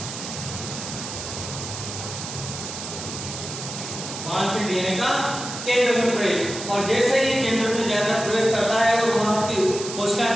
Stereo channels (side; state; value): right; noise; hiss, 8 dB below the sound